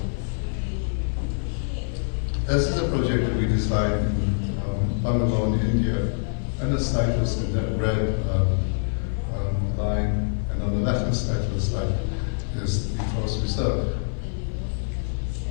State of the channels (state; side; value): silent; right; 55 dB below the other